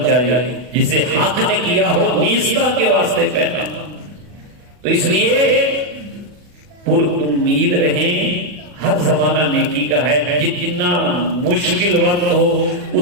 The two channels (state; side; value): late; left; 40 ms